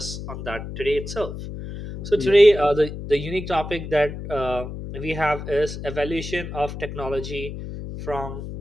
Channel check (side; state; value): left; noise; hum, 8 dB below the sound